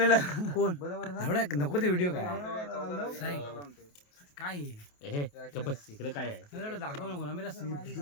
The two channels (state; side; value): late; right; 28 ms